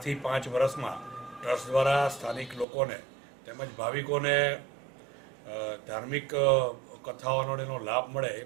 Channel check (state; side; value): drops out; left; at 2.7 s